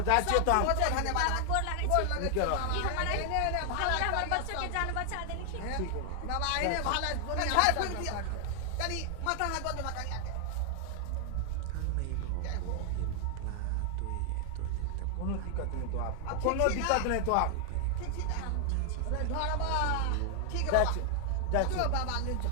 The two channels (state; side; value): different; both; correlation 0.00